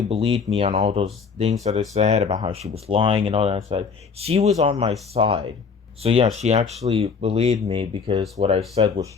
believed me on all those things that I said about how she was lying and all that stuff. She was on my side. So yeah, she actually believed me because what I said was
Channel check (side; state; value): right; quieter; 5.5 dB